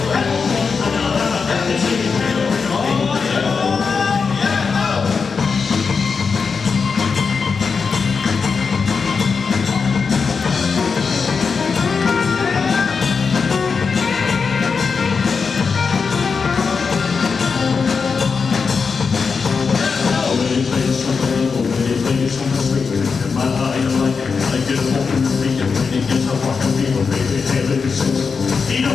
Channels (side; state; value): right; quieter; 5.3 dB